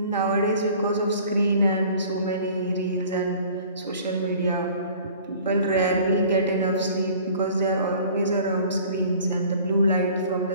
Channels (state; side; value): inverted; both; correlation -0.49